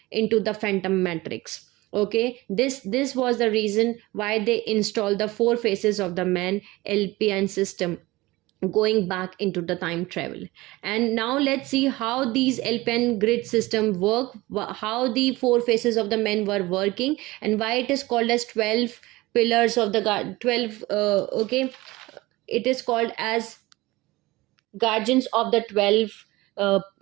into the phantom matrix. Okay, this was the reason why they installed the four faces of the man LPN system, going back into the time travel. And now let's see how these LPN grid system work, how the four faces of the men were working, and why it is called as 12 pillars of the god 12 okay, it is called as guardians of the 12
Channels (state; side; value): quieter; left; 20.1 dB